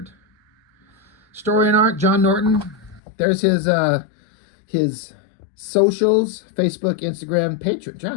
Story and art, John Norton. There's his socials, Facebook, Instagram, Patreon.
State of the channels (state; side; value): drops out; right; at 3.0 s